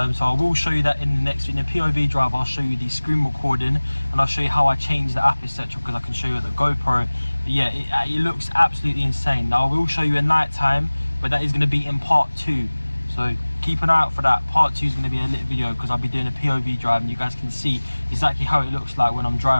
I will show you that in the next, in the POV drive. I'll show you the screen recording, and I'll show you how I change the app, etc., because I can show you the GoPro. But yeah, it looks absolutely insane. Now I will show you at night time, but that is going to be in part 2, so keep an eye out for that. Part 2 is going to be a lit video, because I'll be doing a POV drive and you guys can see exactly how it looks like when I'm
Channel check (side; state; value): both; inverted; correlation -1.00